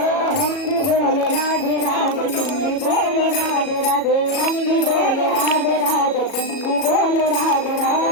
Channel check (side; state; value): right; late; 37 ms